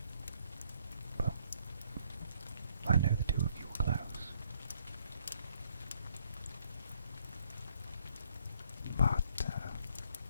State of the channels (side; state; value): both; inverted; correlation -0.68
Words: well, I know the two of you were close. But